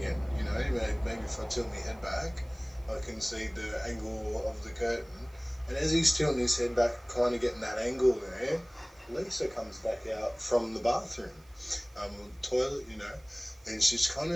maybe if I tilt my head back, I can see the angle of the curtain. And as he's tilting his head back, kind of getting that angle there, Lisa comes back out from the bathroom, toilet, and she's kind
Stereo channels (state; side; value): noise; right; hiss, 29 dB below the sound